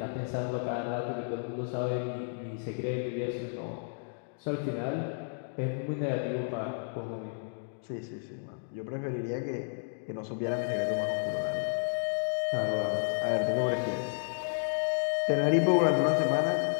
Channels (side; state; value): right; silent; digital silence